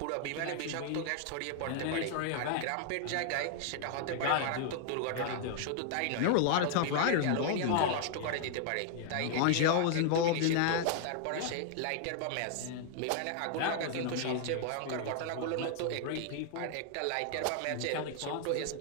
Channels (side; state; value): both; different; correlation 0.00